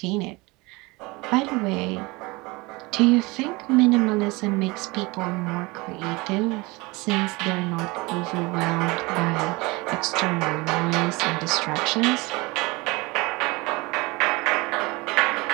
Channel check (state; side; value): quieter; left; 24.2 dB